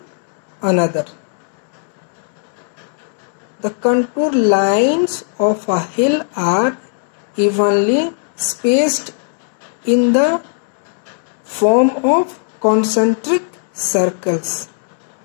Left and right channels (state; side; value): silent; right; 68 dB below the other